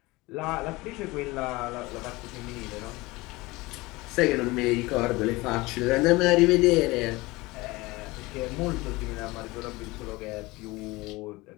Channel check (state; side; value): quieter; right; 21.7 dB